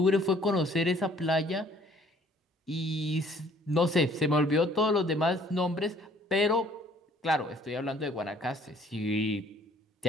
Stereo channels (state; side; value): normal; both; correlation 0.58